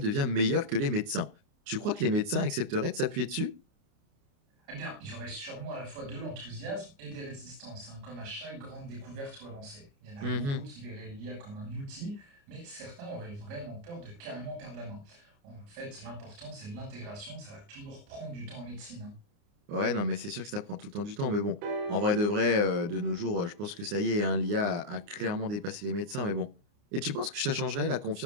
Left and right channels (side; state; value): left; late; 29 ms